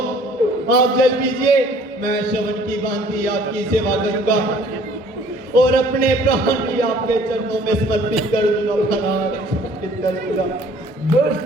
आप जल पीजिए। मैं श्रवण की भांति आपकी सेवा करूंगा और अपने प्राण भी आपके चरणों में समर्पित कर दूंगा महाराज, समर्पित कर दूंगा। दुष्ट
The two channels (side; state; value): both; normal; correlation 0.55